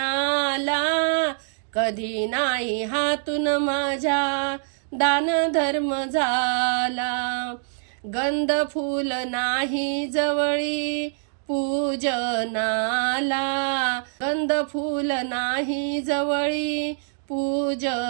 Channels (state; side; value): silent; left; digital silence